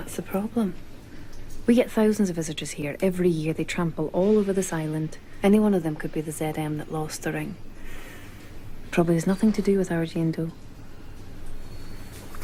the problem. We get thousands of visitors here. Every year they trample all over this island. Any one of them could be the ZM that lost the ring. Probably has nothing to do with our Jane Doe.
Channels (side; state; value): both; identical; correlation 1.00